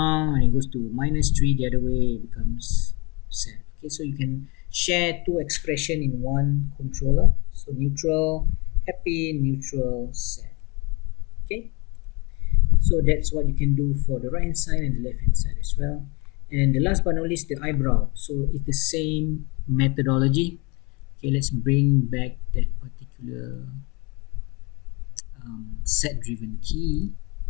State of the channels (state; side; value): quieter; right; 27.8 dB